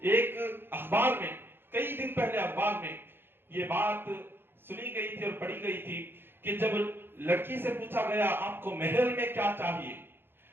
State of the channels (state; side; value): late; left; 0.10 ms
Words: एक अखबार में कई दिन पहले अखबार में ये बात सुनी गई थी और पढ़ी गई थी कि जब लड़की से पूछा गया आपको महल में क्या चाहिए,